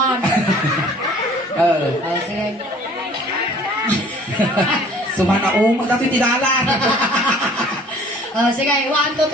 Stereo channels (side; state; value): both; normal; correlation 0.52